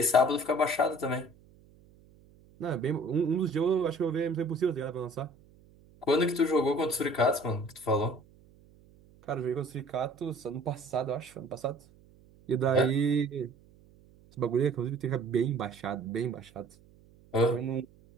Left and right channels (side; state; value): right; noise; hum, 27 dB below the sound